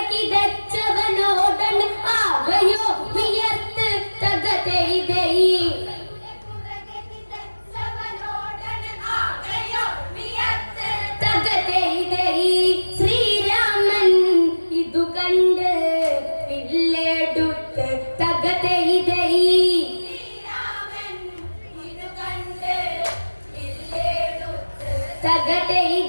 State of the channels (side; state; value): both; inverted; correlation -1.00